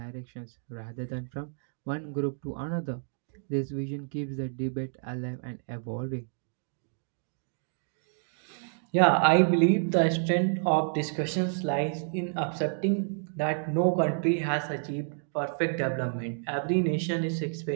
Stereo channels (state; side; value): silent; left; digital silence